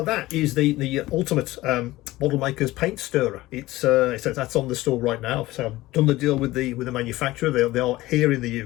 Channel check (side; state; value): right; quieter; 17.8 dB